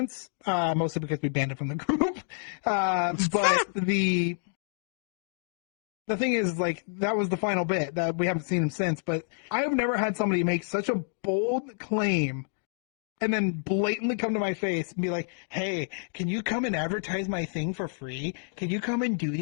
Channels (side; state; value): right; silent; digital silence